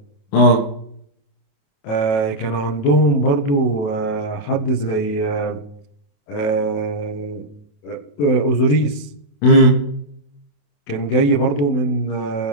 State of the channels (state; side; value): late; right; 28 ms